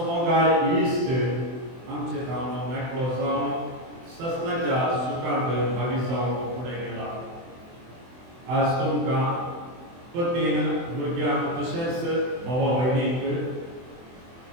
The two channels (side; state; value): left; late; 24 ms